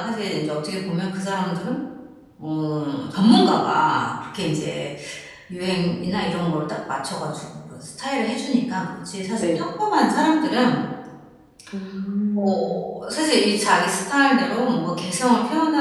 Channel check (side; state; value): both; identical; correlation 1.00